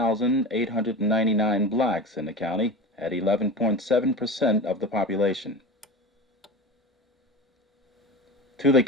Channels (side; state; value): both; normal; correlation 0.29